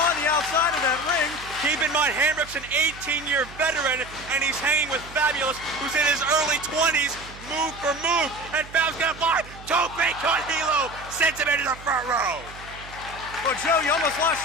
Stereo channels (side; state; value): right; noise; hum, 17 dB below the sound